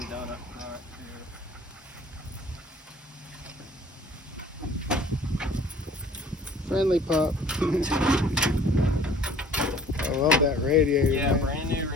been done up front. Friendly pup. I love that radiator. Yeah, man. brand new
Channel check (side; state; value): both; normal; correlation 0.51